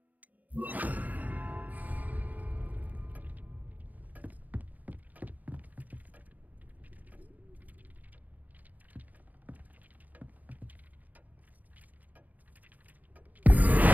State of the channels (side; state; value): left; late; 0.080 ms